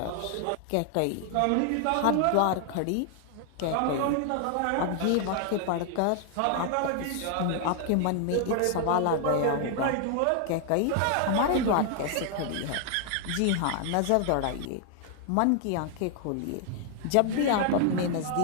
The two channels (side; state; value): both; different; correlation 0.00